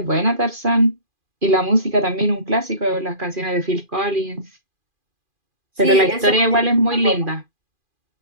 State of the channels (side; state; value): left; late; 2.4 ms